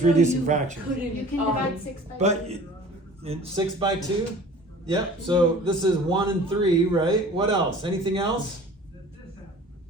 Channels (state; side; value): normal; both; correlation 0.45